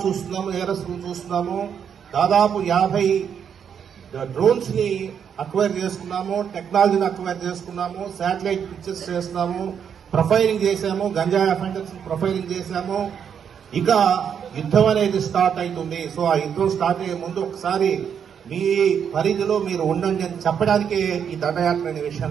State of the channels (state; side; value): quieter; left; 7.8 dB